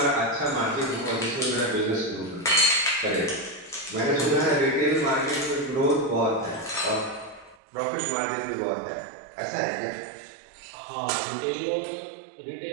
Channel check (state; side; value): drops out; left; at 7.6 s